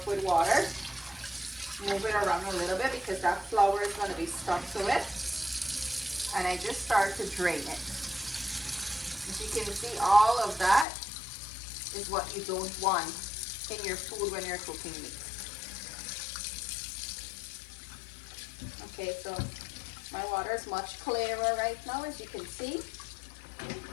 with water, move it around a little bit because that flour is going to be stuck to it, and I just start to drain it. As you can see, all of that is what you don't want in your food when you're cooking meat. Okay, so my water is much clearer right now, as you can see.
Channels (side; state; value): right; drops out; at 10.9 s